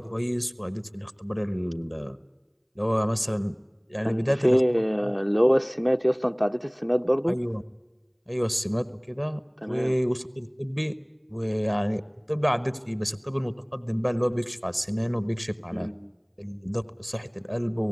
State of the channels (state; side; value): identical; both; correlation 1.00